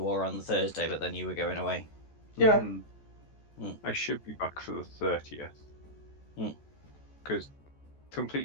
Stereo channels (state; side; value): late; right; 14 ms